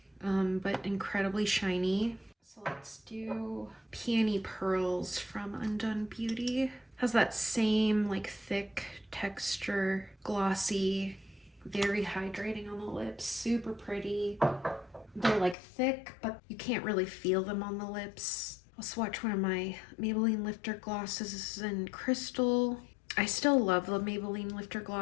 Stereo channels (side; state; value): right; drops out; at 15.6 s